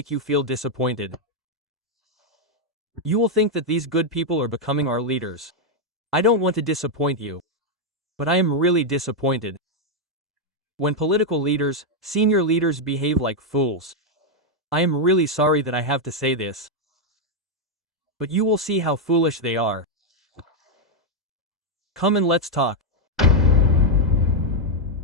you feel disappointed. You will think that these good people are becoming our leaders. I don't want to disappoint you, but I am really disappointed. When political leaders, senior leaders behave like fools. I am really sorry that I have to say this, but you will see how foolish they are. Come and let's talk.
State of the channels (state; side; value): normal; both; correlation 0.00